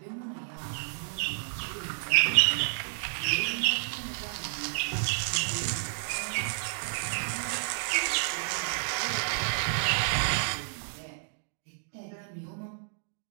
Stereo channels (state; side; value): silent; left; digital silence